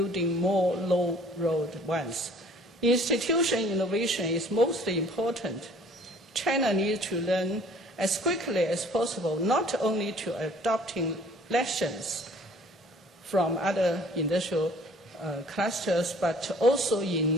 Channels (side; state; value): both; normal; correlation 0.53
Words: more low-road ones. Institutional innovation is most important. China needs to learn as quickly as possible, not only to adopting lessons from other industrial clusters, but also